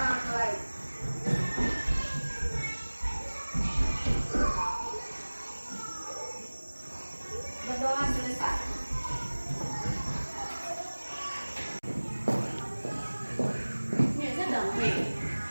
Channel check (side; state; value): both; inverted; correlation -1.00